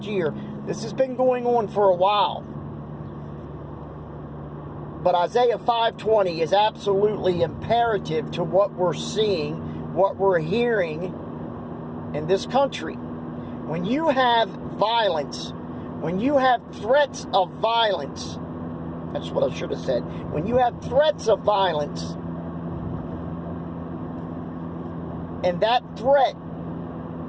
year. This has been going on for a while. But Isaiah 5:20 is absolutely imperative to what we're seeing, what we're hearing in this country. When you have violence, when you have threats of violence, that's what I should have said. When you have threats of violence, and that threat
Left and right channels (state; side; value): identical; both; correlation 1.00